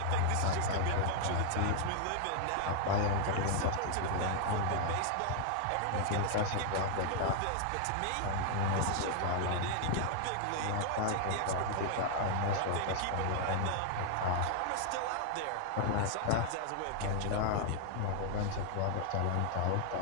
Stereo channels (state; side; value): different; both; correlation 0.00